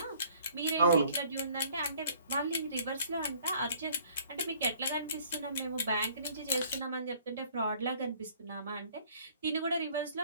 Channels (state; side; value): inverted; both; correlation -0.56